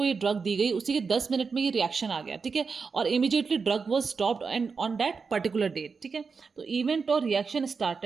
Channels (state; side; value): quieter; left; 5.1 dB